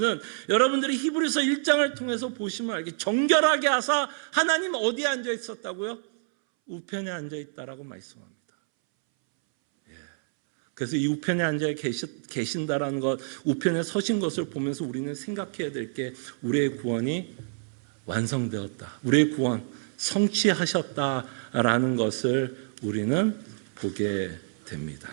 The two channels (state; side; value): silent; left; 60 dB below the other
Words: 여러분들이 히브리서 1장을 통해서 보시면 알게 정결하게 하사 하나님 어디에 앉아 있었다고요? 우편에 앉아 있다라고 말씀합니다. 그래서 이 우편에 앉아 계신다라는 것, 우편에 서신 것을 보면서 우리는 생각해야 될 게 우리의 구원이 완성되었다. 우리의 구원 성취하셨다라는 것을 우리는 보게 됩니다.